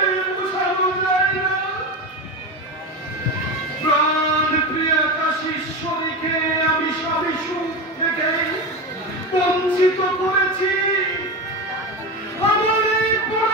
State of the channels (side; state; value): both; normal; correlation 0.21